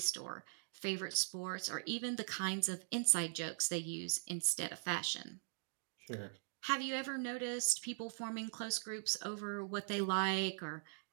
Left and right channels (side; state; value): left; silent; digital silence